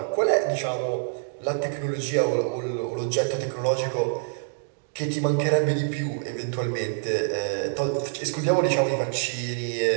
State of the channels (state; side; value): silent; left; digital silence